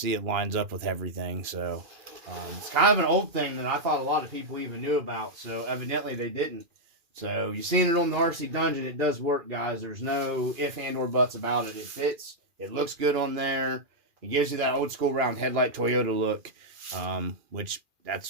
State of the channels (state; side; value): late; left; 2.4 ms